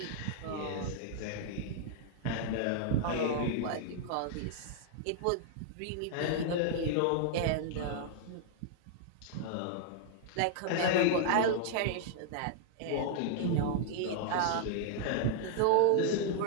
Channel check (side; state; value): both; different; correlation -0.01